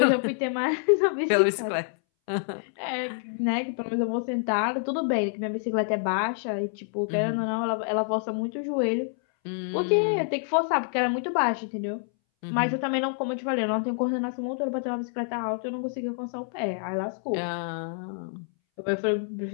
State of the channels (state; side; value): silent; right; 60 dB below the other